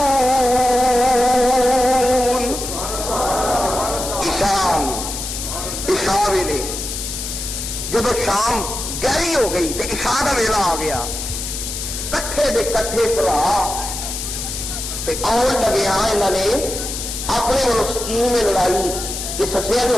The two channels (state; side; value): noise; left; hiss, 6 dB below the sound